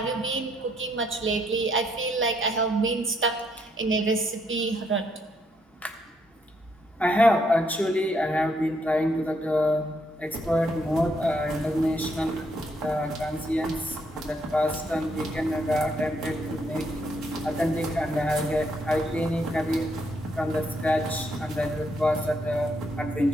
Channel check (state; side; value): normal; both; correlation 0.74